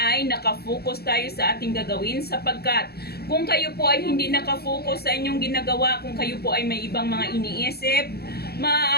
nakafocus tayo sa ating gagawin sapagkat kung kayo po ay hindi nakafocus sa inyong ginagawa, kung kayo po ay may ibang mga iniisip,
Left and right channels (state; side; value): late; right; 0.46 ms